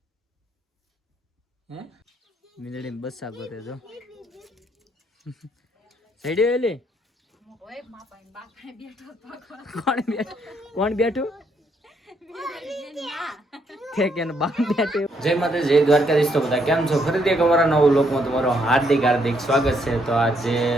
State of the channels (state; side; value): normal; both; correlation 0.73